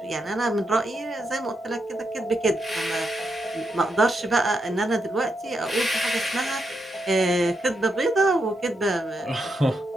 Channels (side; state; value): both; normal; correlation 0.82